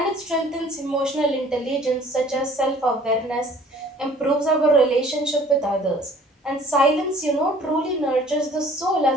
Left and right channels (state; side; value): normal; both; correlation 0.52